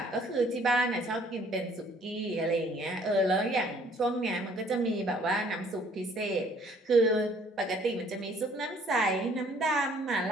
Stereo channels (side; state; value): both; normal; correlation 0.59